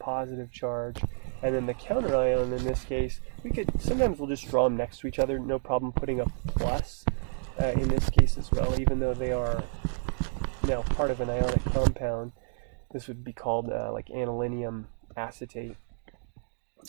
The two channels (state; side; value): silent; left; digital silence